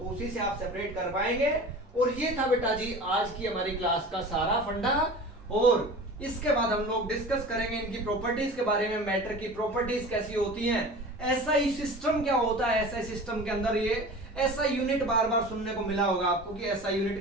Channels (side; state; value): both; normal; correlation 0.37